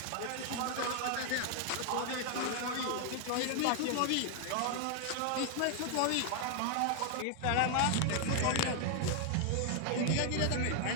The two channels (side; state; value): both; different; correlation 0.00